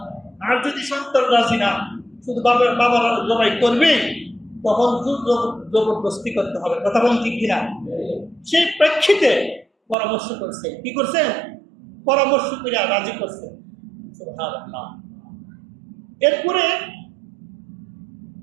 আর যদি সন্তান রাজি না, শুধু বাবার জবাই করবে, তখন জবরদস্তি করতে হবে। কথা বলুন ঠিক কিনা? সেই প্রেক্ষিতে পরামর্শ করছে। কি করছে? পরামর্শ করে রাজি করছে। সুবহানাল্লাহ। এরপরে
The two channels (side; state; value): left; drops out; at 10.0 s